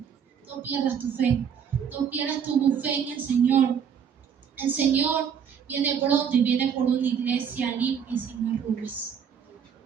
No pierdas tu fe. No pierdas tu fe en el Señor. El Señor viene pronto y viene por una iglesia limpia y sin arrugas.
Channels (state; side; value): quieter; left; 7.6 dB